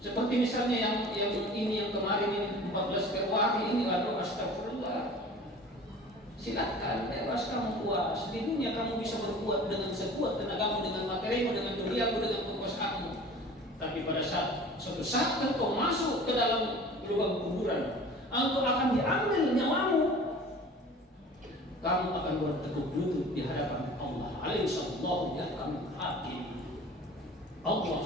seperti misalnya yang kemarin ini 14 Februari ini, lalu astagfirullah. Silakan, bebas kamu puas. Di dunia kamu bisa berbuat dengan sekuat tenagamu, dengan materimu, dengan duniamu, dengan kekuasaanmu. Tapi pada suatu saat engkau masuk ke dalam lubang kuburan, engkau akan diambil nyawamu. Kamu akan bertekuk lutut di hadapan Allah. Alaihissallahu yahkamul hakim. Allah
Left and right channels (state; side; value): normal; both; correlation 0.43